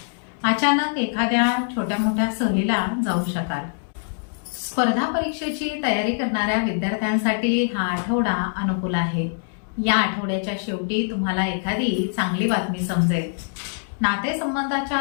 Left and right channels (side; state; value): right; silent; digital silence